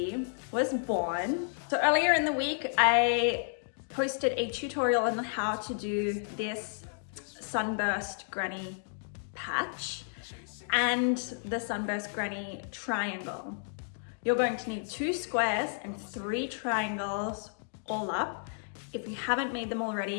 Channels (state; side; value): silent; right; digital silence